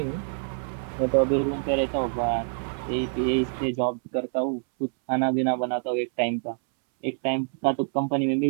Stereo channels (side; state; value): left; silent; 61 dB below the other